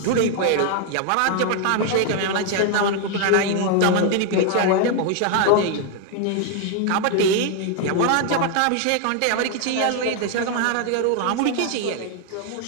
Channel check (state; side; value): different; both; correlation 0.01